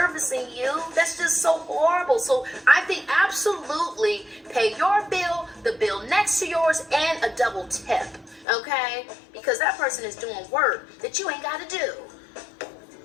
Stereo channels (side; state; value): right; drops out; at 8.5 s